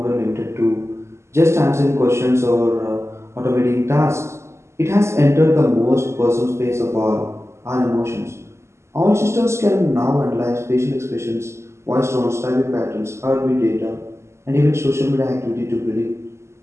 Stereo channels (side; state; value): left; late; 0.13 ms